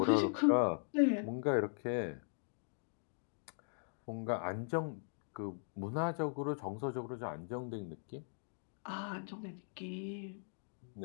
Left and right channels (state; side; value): silent; right; digital silence